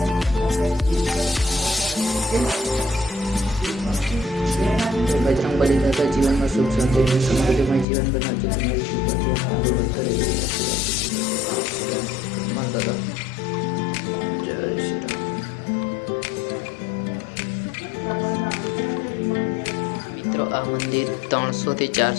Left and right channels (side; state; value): right; drops out; at 7.9 s